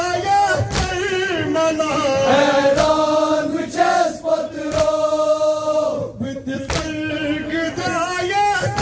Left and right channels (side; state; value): both; identical; correlation 1.00